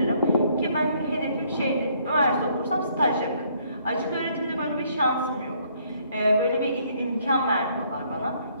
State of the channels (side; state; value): both; inverted; correlation -0.66